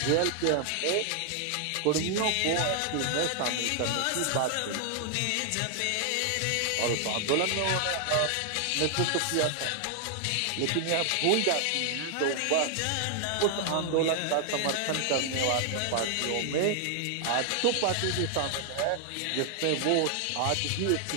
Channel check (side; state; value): both; different; correlation 0.00